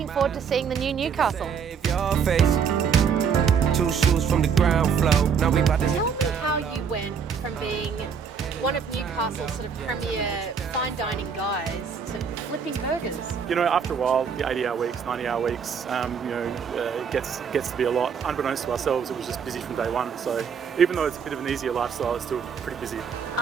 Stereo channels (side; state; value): left; quieter; 6.7 dB